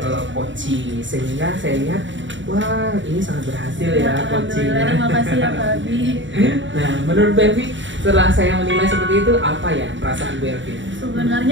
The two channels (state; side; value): late; left; 0.55 ms